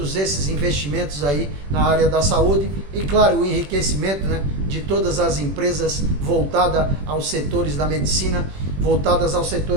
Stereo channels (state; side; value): late; left; 21 ms